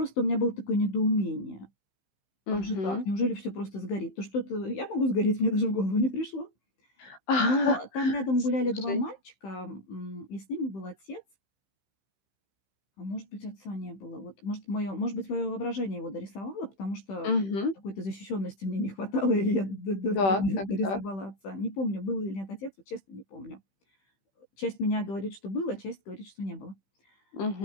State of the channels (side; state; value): right; late; 15 ms